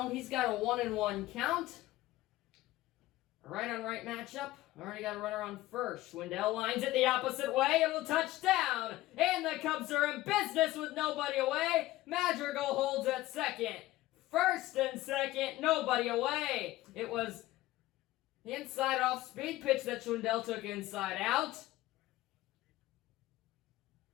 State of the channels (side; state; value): right; quieter; 16.7 dB